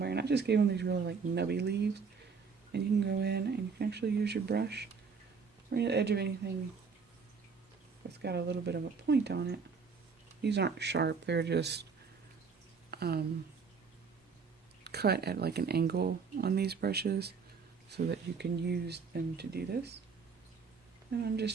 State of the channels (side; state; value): left; quieter; 5.4 dB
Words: and I just gave them these really like nubby leaves, and you can go in and you can actually use your brush right at the edge of anything that's got a little bit of a point on it. These aren't sharp, they're just cut at like an angle on these brushes so that you can use them to do this. And I'm